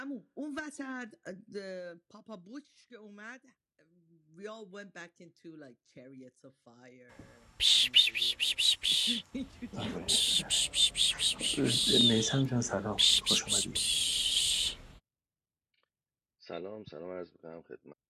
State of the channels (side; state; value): both; identical; correlation 1.00